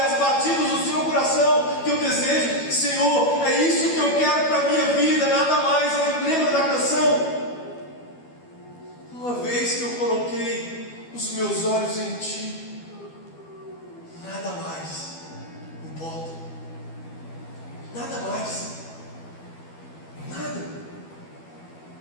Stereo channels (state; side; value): late; right; 12 ms